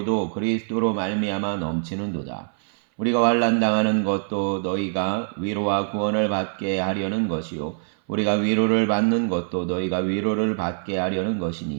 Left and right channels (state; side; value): silent; left; 63 dB below the other